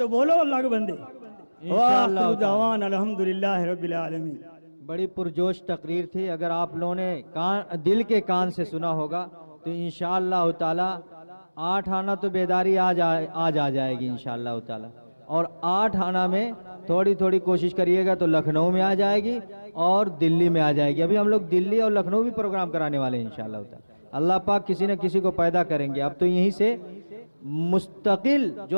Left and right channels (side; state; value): both; inverted; correlation -1.00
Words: بولو اللہ کے بندے، وآخر دعوانا الحمدللہ رب العالمین۔ بڑی پرجوش تقریر تھی، اگر آپ لوگوں نے دل کے کان سے سنا ہوگا تو انشاءاللہ تعالی 8 آنا تو بیداری آج آ جائے گی انشاءاللہ تعالی، اور 8 آنا میں تھوڑی تھوڑی کوشش کریے گا تو لکھنؤ میں آ جائے گی اور دلی میں آ جائے گی۔ ابھی ہم لوگ دلی اور لکھنؤ بھی پروگرام کرانے والے ہیں انشاءاللہ تعالی۔ اللہ پاک کسی نہ کسی کو پیدا کریں گے۔ اب تو یہیں سے مستقل